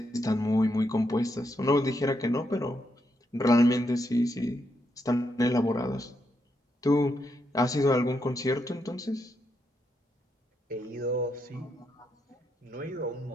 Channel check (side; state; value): both; normal; correlation 0.80